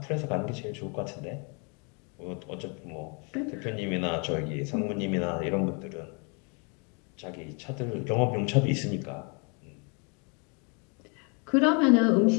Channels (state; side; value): quieter; right; 34.9 dB